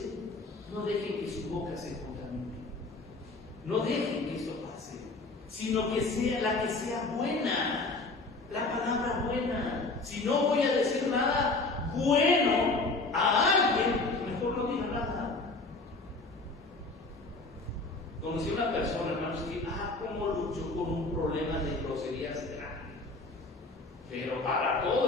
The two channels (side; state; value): right; quieter; 3.4 dB